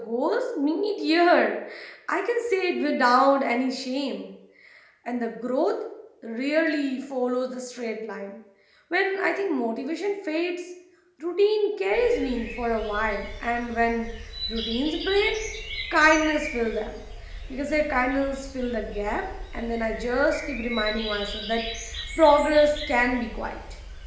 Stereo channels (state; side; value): identical; both; correlation 1.00